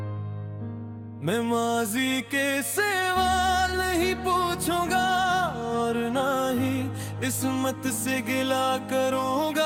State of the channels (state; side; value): identical; both; correlation 1.00